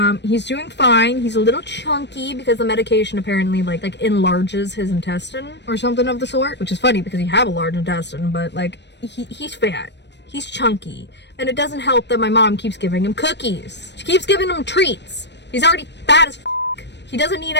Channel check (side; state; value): right; late; 0.50 ms